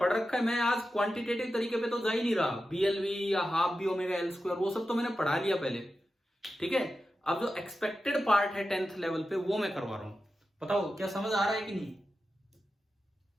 रखा है, मैं आज क्वांटिटेटिव तरीके पे तो जा ही नहीं रहा, बीएलवी या half B omega L square वो सब तो मैंने पढ़ा लिया पहले, ठीक है। अब जो एक्सपेक्टेड पार्ट है 10th लेवल पे वो मैं करवा रहा हूं, बताओ क्या समझ आ रहा है कि नहीं?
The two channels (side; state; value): both; normal; correlation 0.91